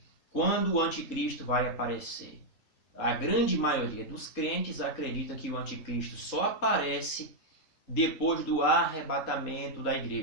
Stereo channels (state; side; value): late; right; 3.7 ms